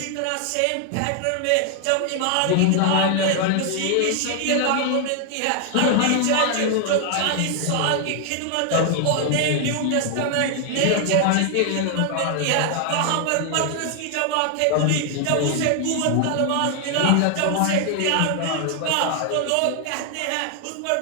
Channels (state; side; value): different; both; correlation 0.00